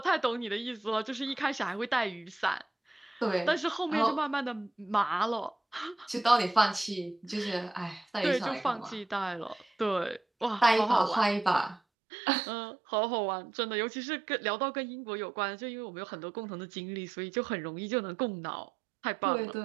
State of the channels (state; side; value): drops out; left; at 11.8 s